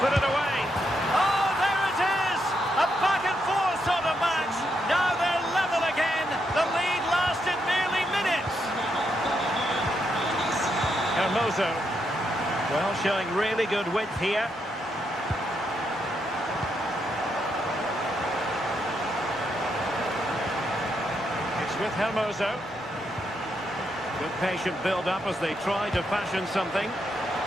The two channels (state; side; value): normal; both; correlation 0.80